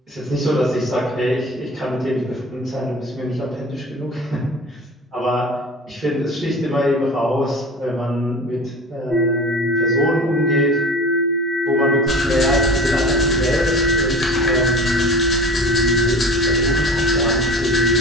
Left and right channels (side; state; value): both; normal; correlation 0.36